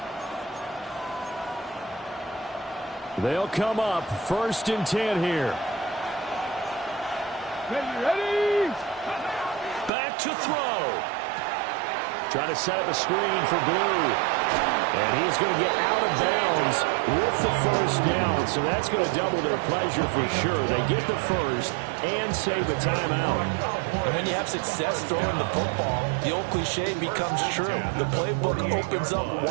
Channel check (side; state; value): left; drops out; at 9.9 s